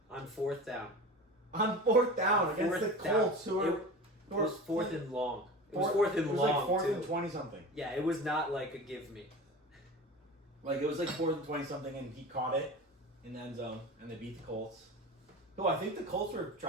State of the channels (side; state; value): both; normal; correlation 0.33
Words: On 4th down. On 4th down against the Colts, it was 4th and long. It was 4th and long. It was like 4th and 20-something. Yeah, it was not like a give me. Like, it was like 4th and 20-something, and he caught it in the end zone, and they beat the Colts. Oh, I think the Colts were